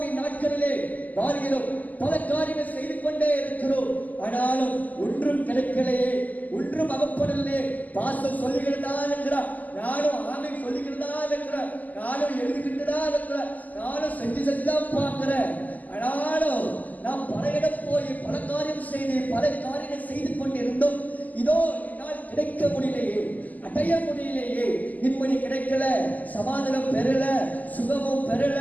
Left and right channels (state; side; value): late; right; 0.080 ms